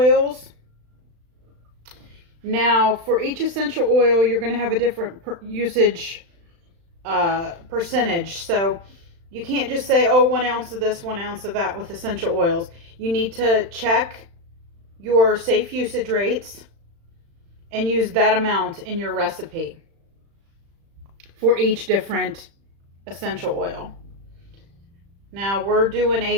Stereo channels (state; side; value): late; left; 35 ms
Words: Now for each essential oil you're going to have a different usage percentage. So you can't just say, oh, 1 ounce of this, 1 ounce of that with essential oils. You need to check your safe usage rates and use that amount in your recipe for each different essential oil. Now we're